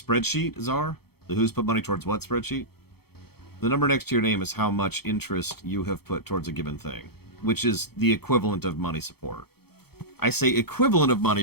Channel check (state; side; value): late; right; 0.96 ms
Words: Czar? The Who's Put Money Towards What spreadsheet? The number next to your name is how much interest you have put towards a given thing, which is the equivalent of money support. I say equivalent of money